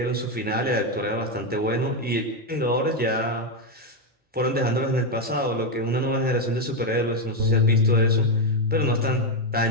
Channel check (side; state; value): both; normal; correlation 0.05